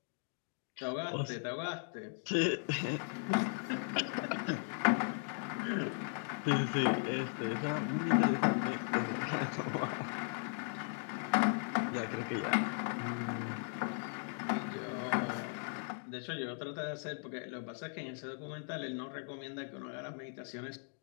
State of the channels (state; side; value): silent; right; 53 dB below the other